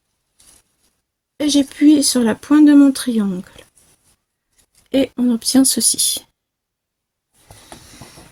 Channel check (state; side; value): identical; both; correlation 1.00